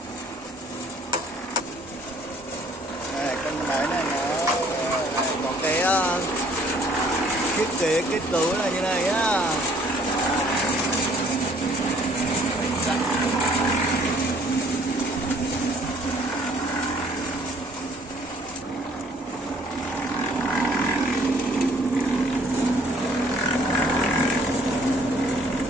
Đây, con máy này nó có cái thiết kế kết cấu là như này nhá.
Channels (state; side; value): normal; both; correlation 0.59